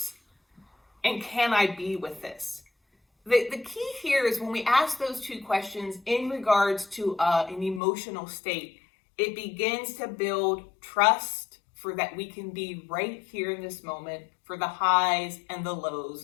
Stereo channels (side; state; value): right; drops out; at 7.8 s